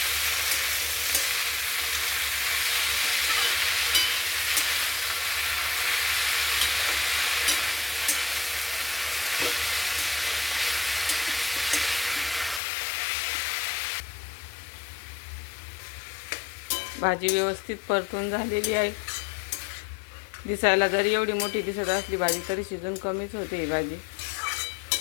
भाजी व्यवस्थित परतून झालेली आहे। दिसायला जरी एवढी मोठी दिसत असली भाजी, तरी शिजून कमीच होते ही भाजी।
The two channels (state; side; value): drops out; right; at 12.6 s